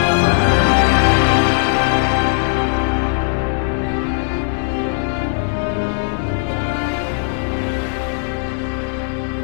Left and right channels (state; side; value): silent; right; digital silence